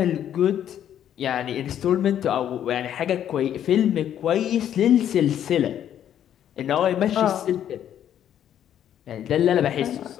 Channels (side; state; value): right; quieter; 10.3 dB